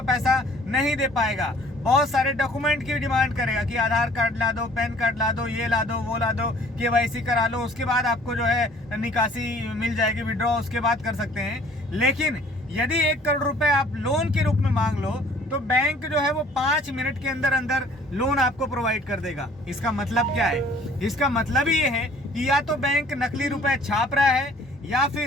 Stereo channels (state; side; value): normal; both; correlation 0.55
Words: पैसा नहीं दे पाएगा। बहुत सारे डॉक्यूमेंट की डिमांड करेगा कि आधार कार्ड ला दो, पैन कार्ड ला दो, ये ला दो, वो ला दो, केवाईसी करा लो, उसके बाद आपको जो है निकासी मिल जाएगी, विड्रॉ उसके बाद कर सकते हैं। लेकिन यदि 1 करोड़ रुपए आप लोन के रूप में मांग लो तो बैंक जो है वो 5 मिनट के अंदर अंदर लोन आपको प्रोवाइड कर देगा। इसका मतलब क्या है? इसका मतलब ये है कि या तो बैंक नकली रुपए छाप रहा है या